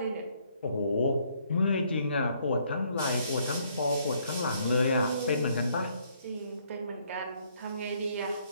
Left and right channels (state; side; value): inverted; both; correlation -0.68